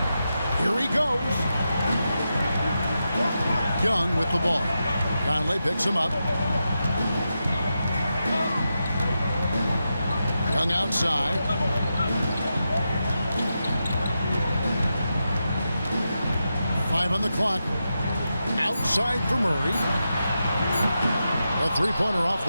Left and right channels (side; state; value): both; inverted; correlation -0.88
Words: Here he goes. Young with the ball. Conley picks him up. Young outside. Five on the clock. Outside for Murray. A three-pointer off